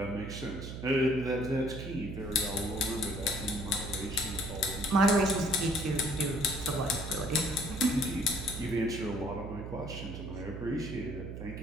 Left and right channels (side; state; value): right; noise; hum, 8 dB below the sound